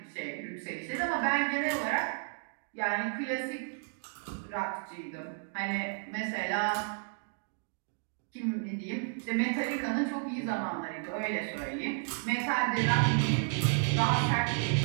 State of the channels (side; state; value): left; silent; 56 dB below the other